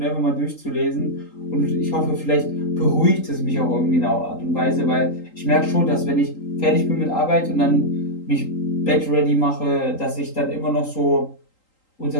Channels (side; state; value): right; late; 3.8 ms